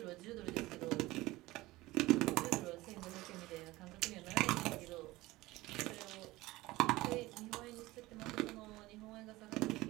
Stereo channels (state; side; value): quieter; left; 19.1 dB